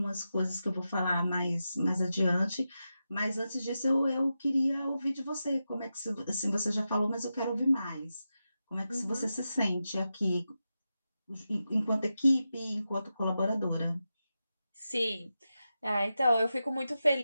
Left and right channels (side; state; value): both; inverted; correlation -0.90